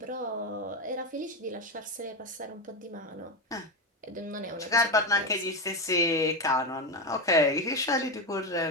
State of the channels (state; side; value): normal; both; correlation 0.14